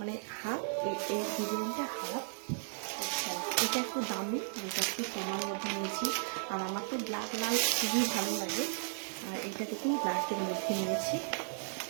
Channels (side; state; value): left; silent; digital silence